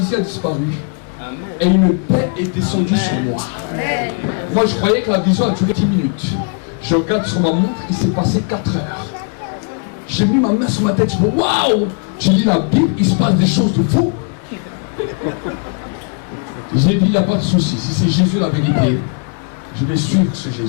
a disparu. Et une paix est descendue sur moi. Moi, je croyais que la vision a duré 10 minutes. Je regarde sur ma montre, il s'est passé 4 heures. J'ai mis ma main sur ma tête, je me dis, waouh! Tu lis la Bible, il se passe des choses de fou. J'ai dit, il n'y a pas de souci. Si c'est Jésus la vérité, je vais suivre ce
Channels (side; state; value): right; quieter; 39.1 dB